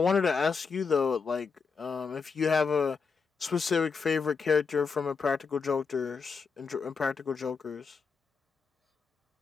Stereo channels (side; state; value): right; quieter; 5.3 dB